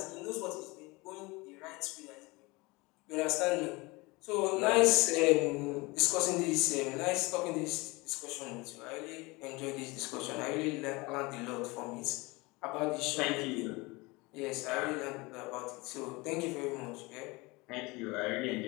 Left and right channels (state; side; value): quieter; right; 24.2 dB